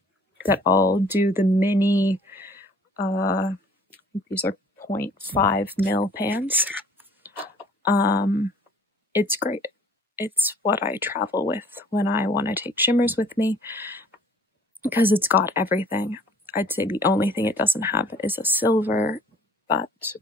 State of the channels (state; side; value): normal; both; correlation 0.53